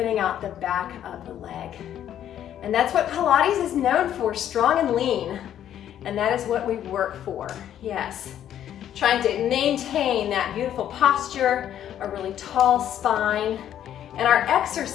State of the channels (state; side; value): quieter; right; 10.7 dB